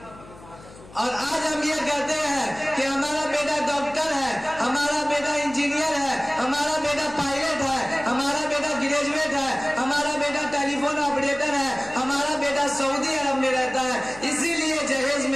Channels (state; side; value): noise; left; hum, 20 dB below the sound